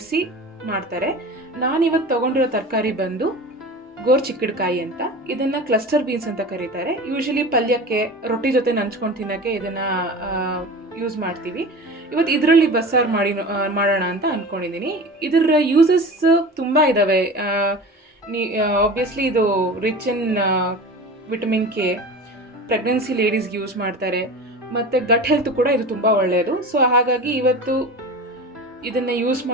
ಮಾಡ್ತಾರೆ. ನಾನಿವತ್ತು ತೊಗೊಂಡಿರೋ ತರಕಾರಿ ಬಂದು ಗೋರ್ಚಿಕ್ಕಡ್ಕಾಯಿ ಅಂತ. ಇದನ್ನು ಕ್ಲಸ್ಟರ್ ಬೀನ್ಸ್ ಅಂತ ಕರೀತಾರೆ. ಯೂಶಲಿ ಪಲ್ಯಕ್ಕೆ ರೊಟ್ಟಿ ಜೊತೆ ನಂಚ್ಕೊಂಡು ತಿನ್ನೋಕ್ಕೆ ಇದನ್ನು ಯೂಸ್ ಮಾಡ್ತೀವಿ. ಇವತ್ತು ಇದರಲ್ಲಿ ಬಸ್ಸಾರು ಮಾಡೋಣ ಅಂತ ಅಂದ್ಕೊಂಡಿದ್ದೀನಿ. ಇದರ ಯೂಸಸ್ ತುಂಬ ಇದ್ದಾವೆ. ಆಬ್ವಿಯಸ್ಲಿ ಇದು rich in vitamin K, pregnancy ಲೇಡೀಸ್ಗೆ ಯೂಸ್ ಮಾಡ್ತಾರೆ, ಮತ್ತು ಗಟ್ ಹೆಲ್ತ್ ಕೂಡ ಇದು ತುಂಬ ಒಳ್ಳೆಯದು. ಸೊ ಹಾಗಾಗಿ ಇವತ್ತು ಇದನ್ನು ಯೂಸ್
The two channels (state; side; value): normal; both; correlation 0.34